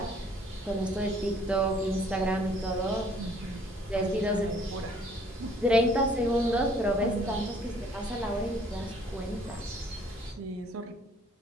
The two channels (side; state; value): both; normal; correlation 0.59